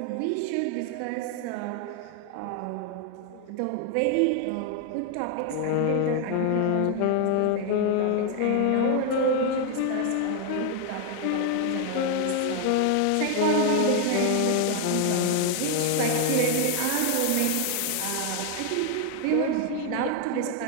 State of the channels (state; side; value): different; both; correlation 0.00